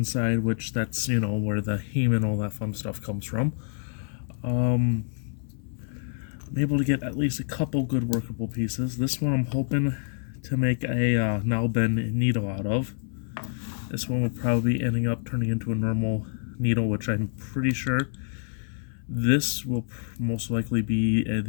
which that's, where the heme and all that fun stuff comes from. I'm able to get at least a couple good workable pieces. This one I'm hoping to make a null bend needle out of. This one will probably be ending up turning into a normal needle, which I'm pretty sure this will most likely be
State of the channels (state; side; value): silent; right; 56 dB below the other